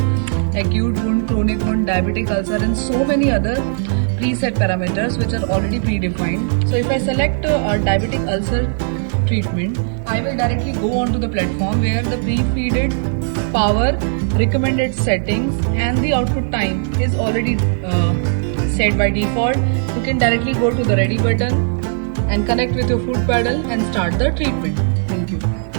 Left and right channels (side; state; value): left; silent; digital silence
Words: acute wound, chronic wound, diabetic ulcer and so many other preset parameters which are already predefined. So if I select a diabetic ulcer treatment, I will directly go onto the platform where the pre-feeded power, recommended settings and the output time is already set by default. You can directly go to the ready button and connect with your foot pedal and start the treatment. Thank you.